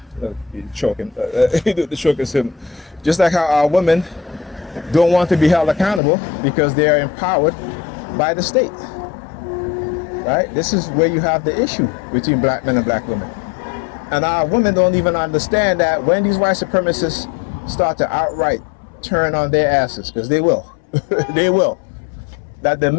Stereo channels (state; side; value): drops out; right; at 6.0 s